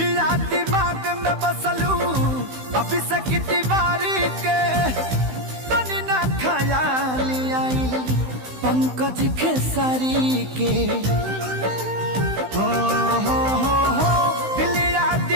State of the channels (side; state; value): left; late; 16 ms